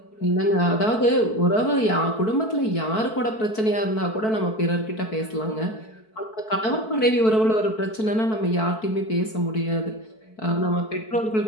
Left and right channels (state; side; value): late; right; 4.6 ms